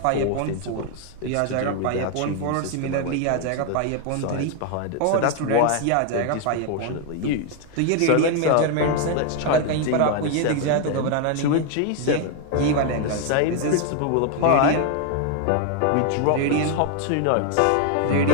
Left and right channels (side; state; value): both; different; correlation 0.01